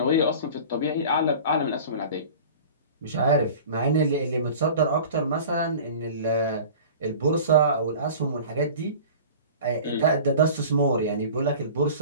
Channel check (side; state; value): both; inverted; correlation -0.40